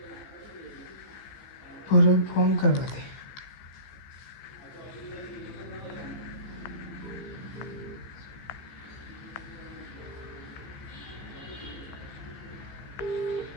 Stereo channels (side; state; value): right; late; 15 ms